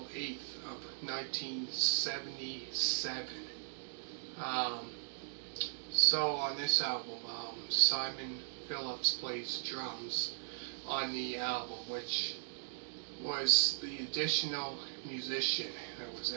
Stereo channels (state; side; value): silent; left; digital silence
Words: 8th of 1977. So on this album, Simon Phillips plays drums on the album, which was the additional musician that was